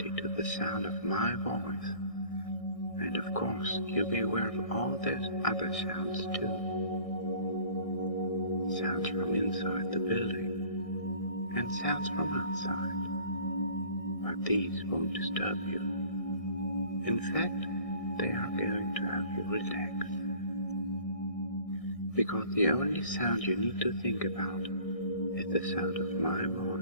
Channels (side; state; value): right; late; 1.6 ms